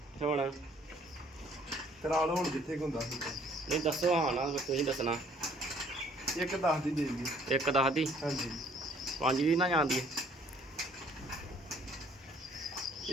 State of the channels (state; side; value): normal; both; correlation 0.60